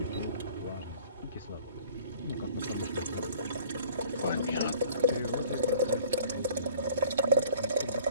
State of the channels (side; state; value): both; inverted; correlation -0.51